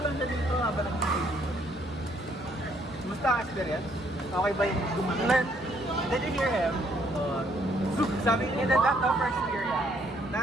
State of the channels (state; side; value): normal; both; correlation 0.67